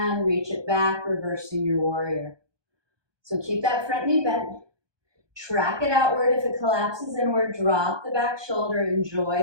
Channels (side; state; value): left; late; 1.2 ms